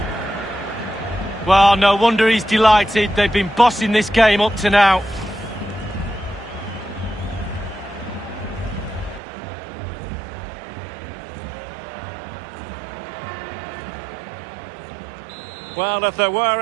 Well, no wonder he's delighted. They've been bossing this game up to now. Well, if there were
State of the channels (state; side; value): drops out; left; at 9.2 s